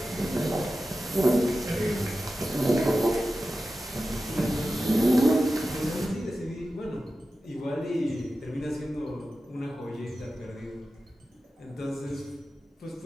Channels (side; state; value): both; normal; correlation 0.93